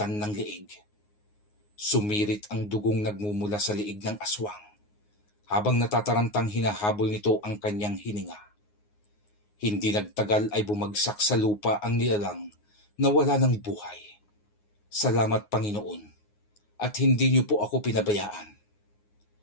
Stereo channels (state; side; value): late; right; 9.6 ms